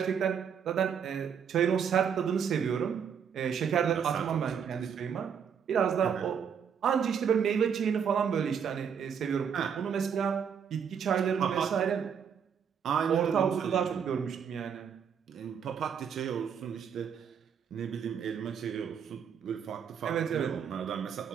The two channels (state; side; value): quieter; left; 7.5 dB